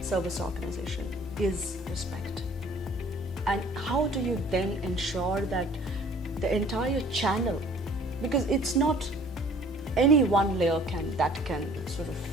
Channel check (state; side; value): normal; both; correlation 0.53